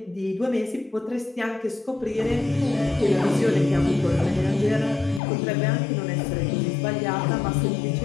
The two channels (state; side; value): drops out; right; at 5.2 s